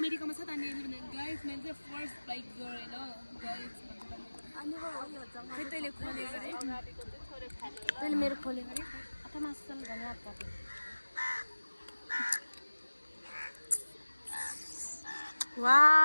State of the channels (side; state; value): both; inverted; correlation -1.00